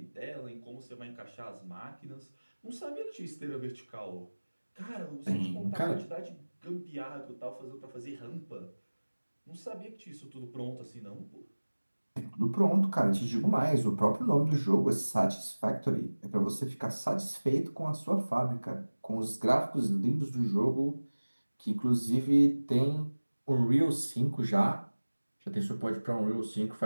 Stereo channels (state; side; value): inverted; both; correlation -1.00